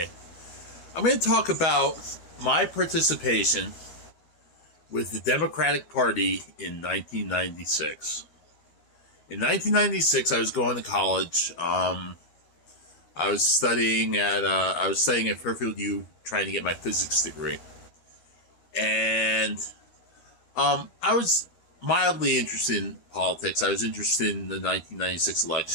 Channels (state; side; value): late; right; 12 ms